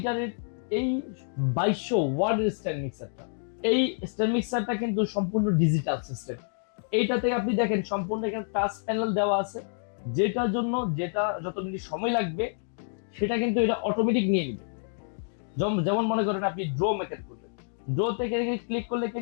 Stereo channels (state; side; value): silent; right; digital silence